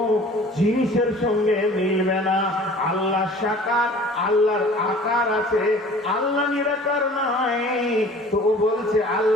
জিনিসের সঙ্গে মিলবে না। আল্লাহ সাকার, আল্লাহর আকার আছে। আল্লাহ নিরাকার নয়। তো ও বলছে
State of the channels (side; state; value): both; normal; correlation 0.47